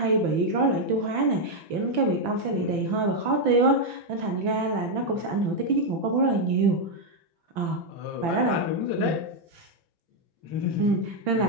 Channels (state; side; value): late; left; 5.9 ms